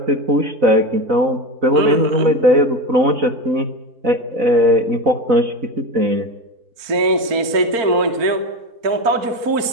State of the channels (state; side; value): late; left; 4.4 ms